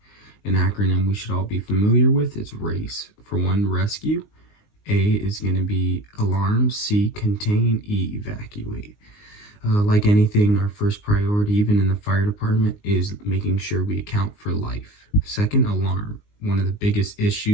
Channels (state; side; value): late; right; 19 ms